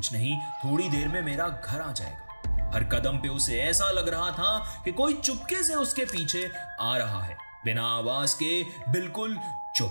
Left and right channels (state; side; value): inverted; both; correlation -1.00